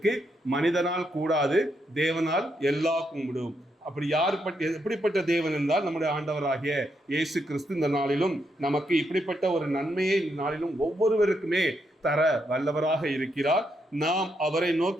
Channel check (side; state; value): both; normal; correlation 0.79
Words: மனிதனால் கூடாது, தேவனால் எல்லா கூடும். அப்படி எப்படிப்பட்ட தேவன் என்றால் நம்முடைய ஆண்டவராகிய இயேசு கிறிஸ்து இந்த நாளிலும் நமக்கு இப்படிப்பட்ட ஒரு நன்மையை இந்த நாளிலும் ஒவ்வொருவருக்குமே தர வல்லவராக இருக்கிறார். நாம் அவரை